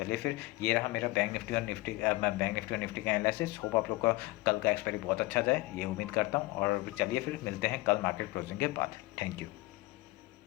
फिर ये रहा मेरा बैंक निफ्टी और निफ्टी का एनालिसिस। होप आप लोग का कल का एक्सपायरी बहुत अच्छा जाए, ये उम्मीद करता हूँ। और चलिए फिर मिलते हैं कल मार्केट क्लोजिंग के बाद। Thank you.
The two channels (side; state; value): right; quieter; 20.9 dB